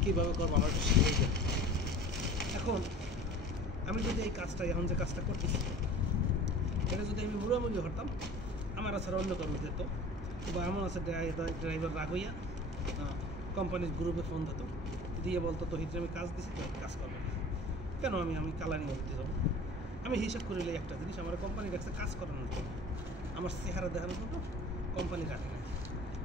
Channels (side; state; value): both; normal; correlation 0.42